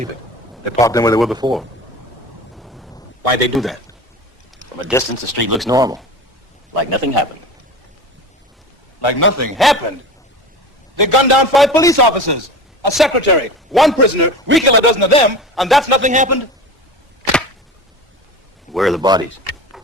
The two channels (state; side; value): normal; both; correlation 0.32